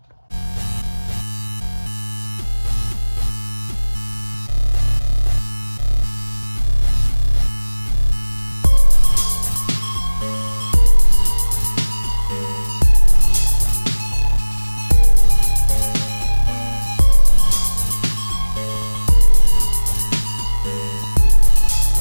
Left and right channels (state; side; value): inverted; both; correlation -1.00